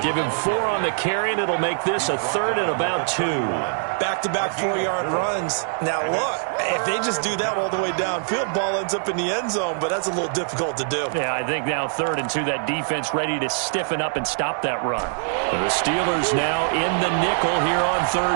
Give him 4 on the carry, and it'll make this a 3rd and about 2. Back-to-back 4-yard runs. Now, look, if they just do that all the way downfield, ball ends up in the end zone, but that's a little difficult to do. Yeah, I think now 3rd and 2, that defense ready to stiffen up and stop that run. The Steelers now in the nickel here on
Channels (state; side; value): silent; left; digital silence